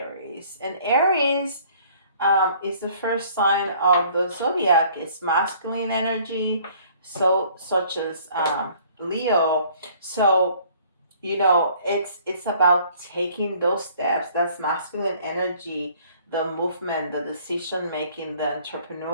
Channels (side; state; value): both; inverted; correlation -0.56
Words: and Aries is the first sign of the zodiac. It's masculine energy, so such as Leo. So it's about taking those steps. That's masculine energy, the movement, the decision making, the